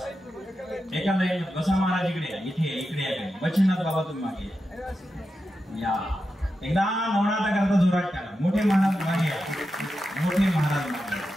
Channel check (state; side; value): normal; both; correlation 0.89